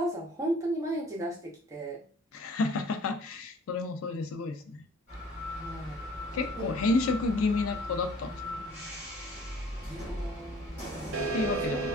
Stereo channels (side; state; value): both; normal; correlation 0.53